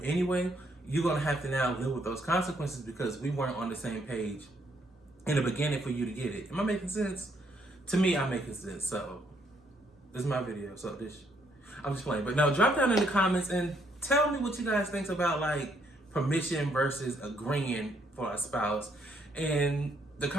anyway, you're going to have to now live with those consequences because we weren't on the same page in the beginning for you to get it. Am I making sense? To me, I'm making sense. So this is my video. So I'm just playing. But no, drop down in the comments and tell me what you guys think about like permission versus agreeing for a spouse. And the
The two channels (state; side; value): normal; both; correlation 0.71